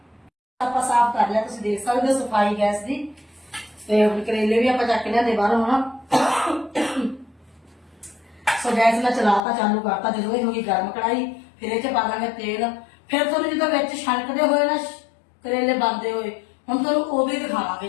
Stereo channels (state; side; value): drops out; right; at 9.4 s